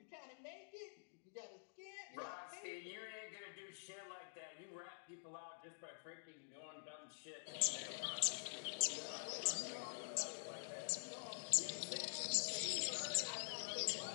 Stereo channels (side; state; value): right; silent; digital silence